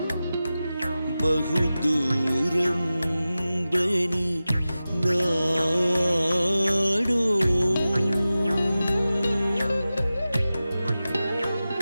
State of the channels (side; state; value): both; inverted; correlation -0.95